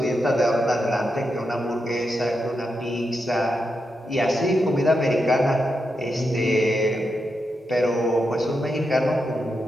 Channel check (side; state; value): both; normal; correlation 0.86